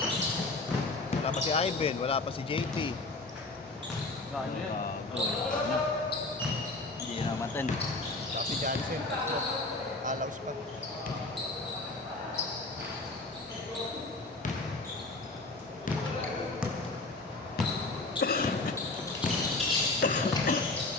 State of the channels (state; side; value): quieter; right; 3.2 dB